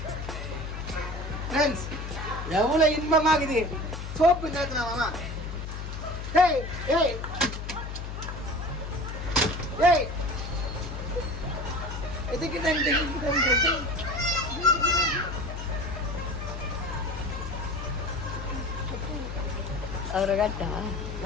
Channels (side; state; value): left; noise; hum, 6 dB below the sound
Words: ஃப்ரெண்ட்ஸ், எவ்வளவு இன்பமாகுது சோப்பு நேரத்துல மாமா. ஏய் ஏய் ஏய் எதுக்கு அவரை காட்டா